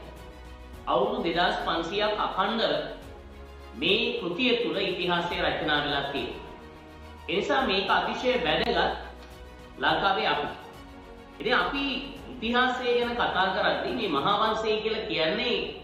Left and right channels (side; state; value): both; identical; correlation 1.00